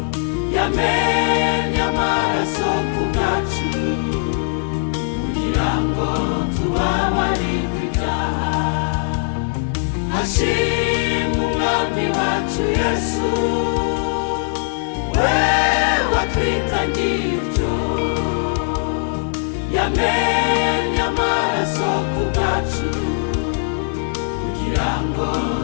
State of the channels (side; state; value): right; silent; digital silence